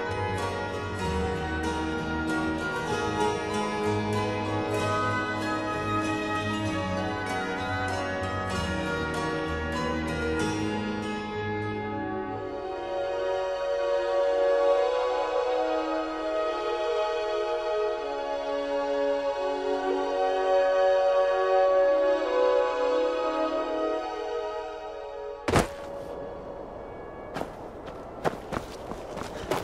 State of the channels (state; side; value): identical; both; correlation 1.00